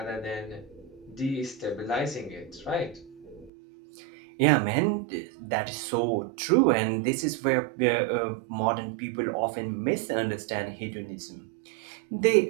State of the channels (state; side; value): drops out; left; at 3.5 s